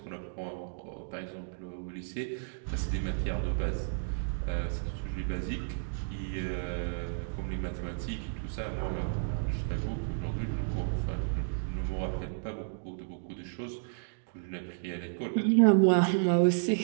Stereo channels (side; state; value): left; silent; digital silence